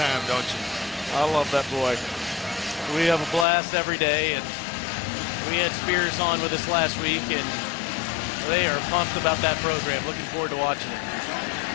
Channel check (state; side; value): drops out; right; at 3.5 s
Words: don't you? I love that boy. We have a blast every day, and we had Spears on with us last week, and they are pumped about that program. Looking forward to watching it.